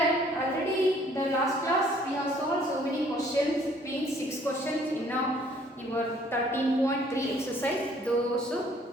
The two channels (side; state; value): both; normal; correlation 0.60